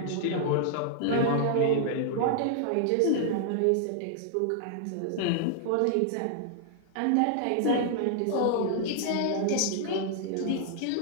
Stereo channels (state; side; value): different; both; correlation -0.01